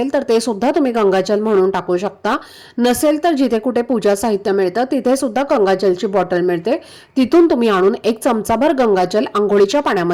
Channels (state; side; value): identical; both; correlation 1.00